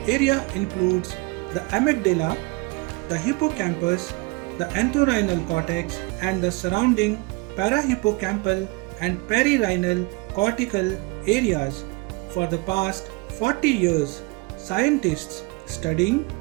area includes the amygdala, the hippocampus, the entorhinal cortex, and the surrounding parahippocampal and perirhinal cortical areas. For the past 40 years, scientists studying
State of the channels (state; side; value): quieter; left; 25.8 dB